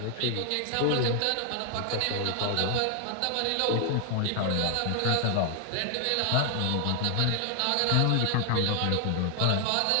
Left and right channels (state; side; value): different; both; correlation 0.00